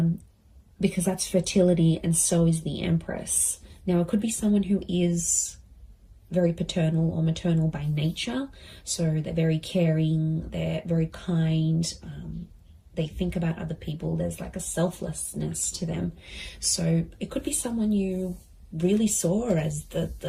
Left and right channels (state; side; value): identical; both; correlation 1.00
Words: because that's fertility, and so is the Empress. Now it could be someone who is very paternal or maternal by nature. So they're very caring, they're very kind, they think about other people. There's like a selflessness to them. So it could be someone you really saw as